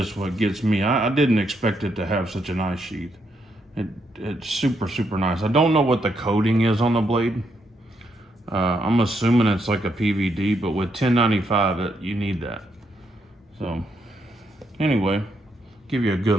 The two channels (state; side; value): normal; both; correlation 0.77